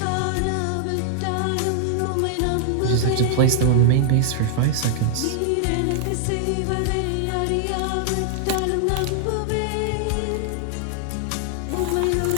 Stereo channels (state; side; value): different; both; correlation -0.01